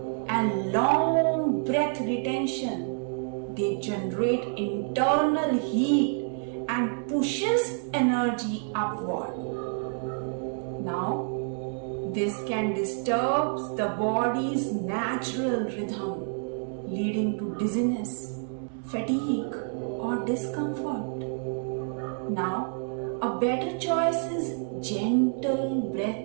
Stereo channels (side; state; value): left; silent; 59 dB below the other